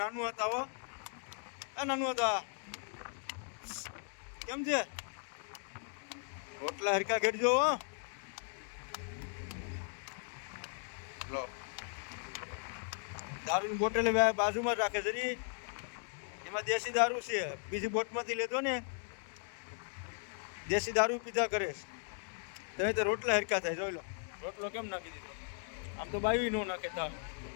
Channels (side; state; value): right; silent; 53 dB below the other